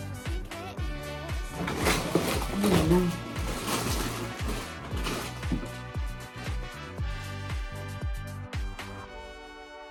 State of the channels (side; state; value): both; identical; correlation 1.00